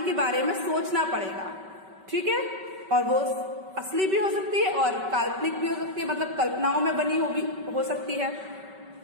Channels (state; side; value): late; left; 5.2 ms